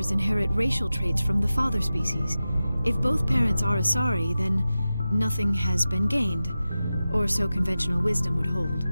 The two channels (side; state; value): both; inverted; correlation -0.94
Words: inherit racial traits from the father species. If both parents are Asari, then nothing has been gained, or so conventional wisdom would hold.